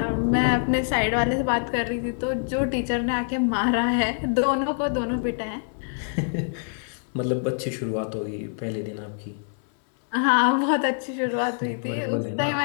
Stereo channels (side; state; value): right; silent; 58 dB below the other